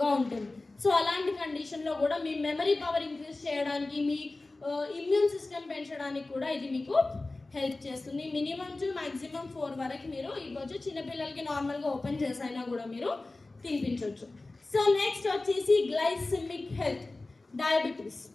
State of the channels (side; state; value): right; quieter; 3.1 dB